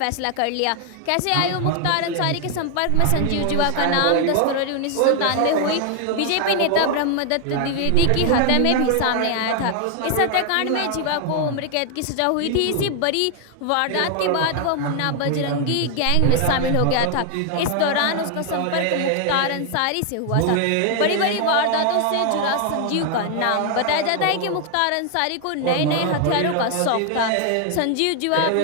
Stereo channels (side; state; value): both; different; correlation 0.00